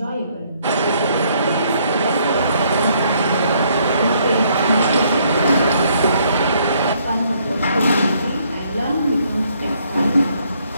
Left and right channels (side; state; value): both; inverted; correlation -0.68